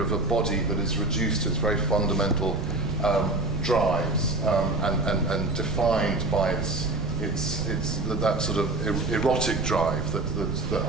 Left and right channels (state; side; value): noise; right; rumble, 4 dB below the sound